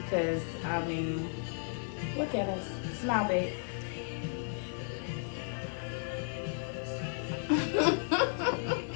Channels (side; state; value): right; silent; digital silence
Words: because, I mean, look at us. Smile, babe.